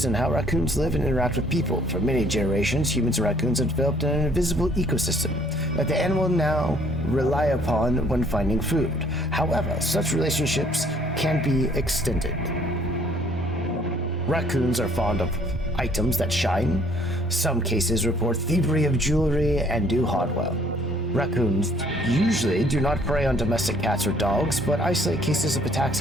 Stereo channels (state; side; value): normal; both; correlation 0.60